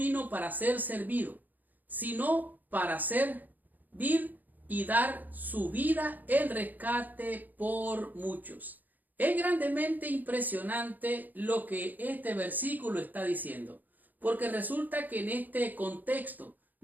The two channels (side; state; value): left; late; 0.084 ms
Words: para ser servido, sino para servir y dar su vida en rescate por muchos. Es grandemente impresionante lo que este versículo está diciendo, porque resulta que en este contexto